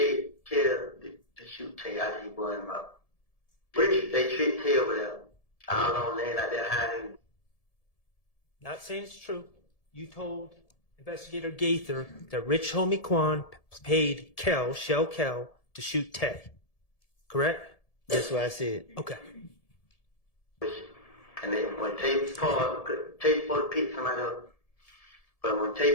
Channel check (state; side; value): late; right; 1.7 ms